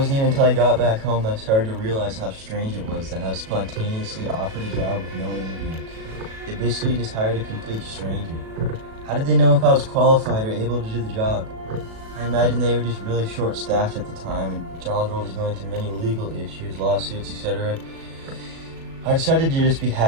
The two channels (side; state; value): left; late; 37 ms